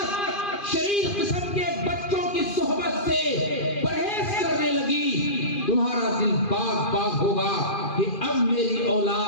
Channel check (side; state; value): right; late; 2.4 ms